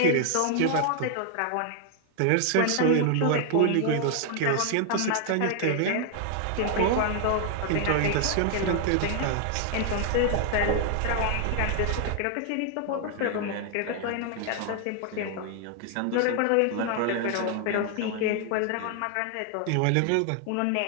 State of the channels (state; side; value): different; both; correlation 0.00